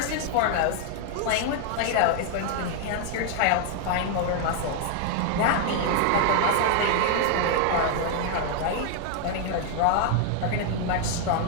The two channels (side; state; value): both; different; correlation 0.00